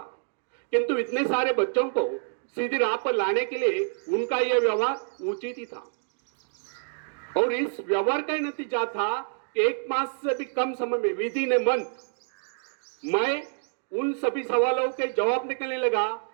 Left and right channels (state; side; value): silent; left; digital silence